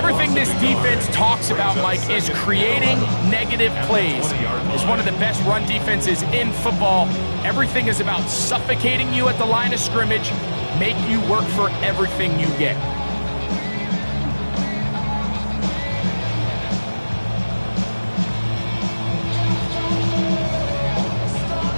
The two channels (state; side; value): inverted; both; correlation -1.00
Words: this defense talks about, Mike, is creating negative plays. It's one of the best run defenses in football. Everything is about suffocating you at the line of scrimmage, make you work for everything you get.